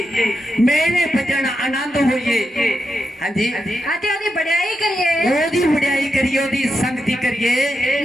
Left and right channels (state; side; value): normal; both; correlation 0.87